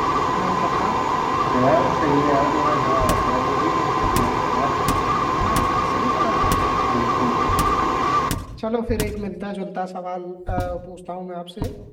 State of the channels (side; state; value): both; identical; correlation 1.00